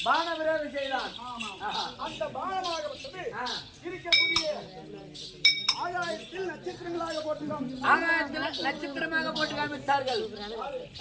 பான விரோதம் செய்தான். அந்த பானமாகப்பட்டது இருக்கக்கூடிய ஆகாயத்தில் நட்சத்திரங்களாக போட்டுதான் ஆகாயத்தில் நட்சத்திரமாக போட்டு காமித்தார்கள்.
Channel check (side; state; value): both; identical; correlation 1.00